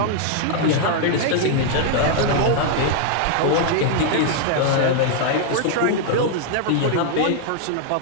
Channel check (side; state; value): both; different; correlation 0.00